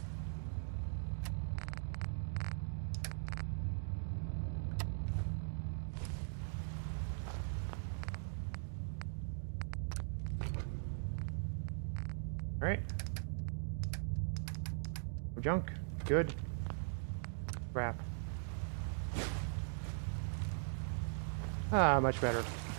Alright. No junk. Good. Crap. Ah, much better.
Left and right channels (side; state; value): left; silent; digital silence